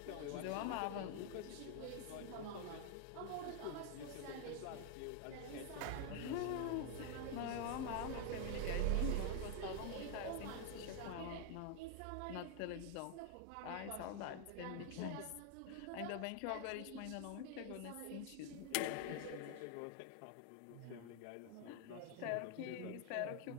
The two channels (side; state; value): both; different; correlation 0.00